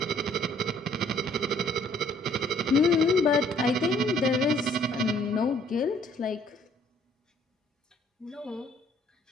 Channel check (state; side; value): normal; both; correlation 0.61